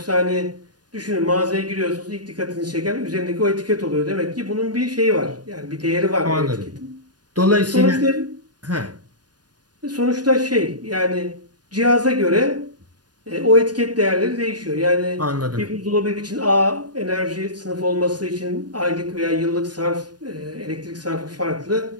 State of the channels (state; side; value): late; left; 0.69 ms